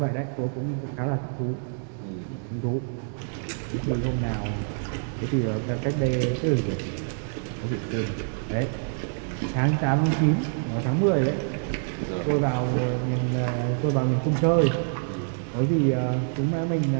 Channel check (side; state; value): left; silent; 61 dB below the other